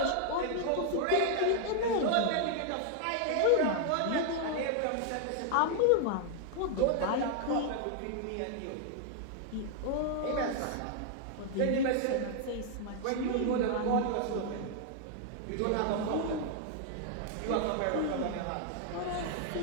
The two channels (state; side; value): different; both; correlation 0.00